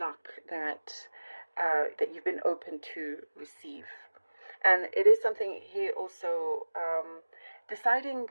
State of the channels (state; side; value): inverted; both; correlation -1.00